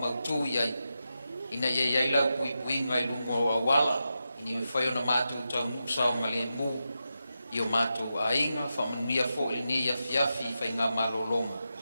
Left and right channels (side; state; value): both; inverted; correlation -0.89